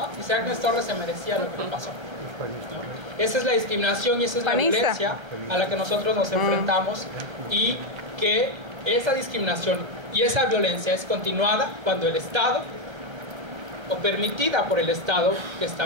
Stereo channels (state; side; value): late; left; 1.3 ms